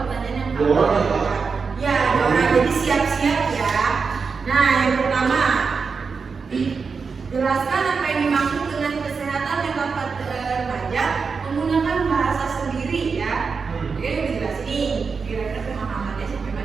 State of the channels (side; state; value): left; quieter; 5.2 dB